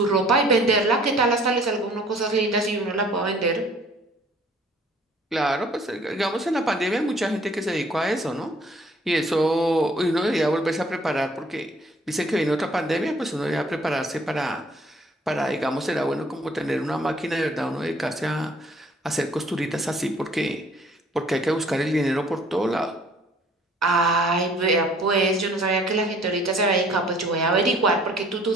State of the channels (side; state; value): both; normal; correlation 0.56